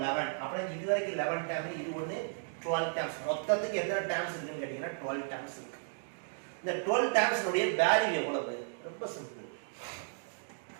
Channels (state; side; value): silent; left; digital silence